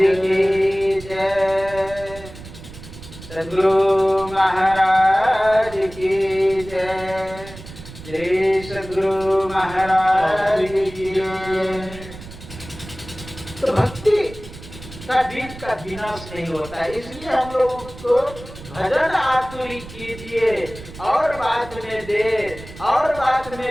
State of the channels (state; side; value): noise; right; rumble, 15 dB below the sound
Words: जय, सद्गुरु महाराज की जय, श्री सद्गुरु महाराज की जय। तो भक्ति का बीज का विनाश नहीं होता है, इसलिए हम लोग को भजन आतुरी कीजिए और बात में देर, और बात